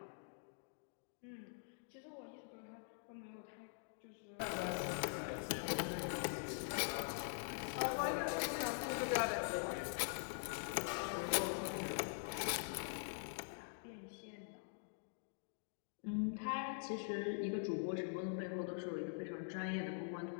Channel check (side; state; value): right; silent; digital silence